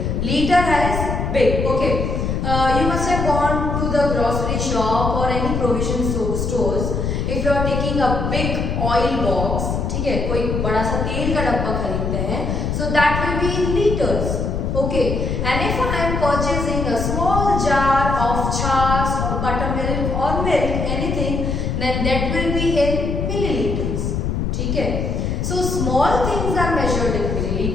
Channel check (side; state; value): left; noise; rumble, 1 dB below the sound